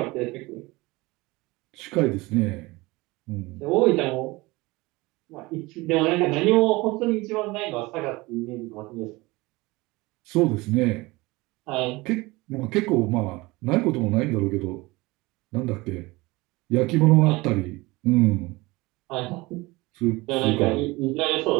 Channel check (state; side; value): quieter; left; 22.2 dB